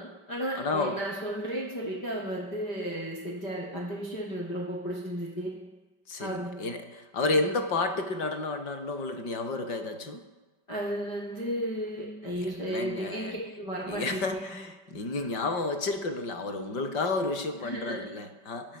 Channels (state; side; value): late; right; 5.1 ms